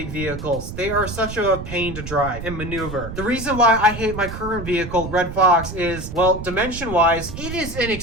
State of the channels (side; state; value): right; noise; rumble, 9 dB below the sound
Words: vehicles. They are such a pain to drive and maneuver. The reason why I hate my current vehicle, Red Fox, is, well, dimension-wise, it is an